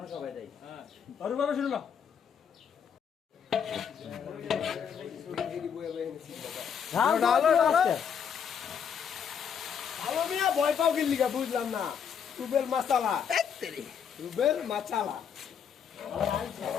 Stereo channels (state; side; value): quieter; right; 7.5 dB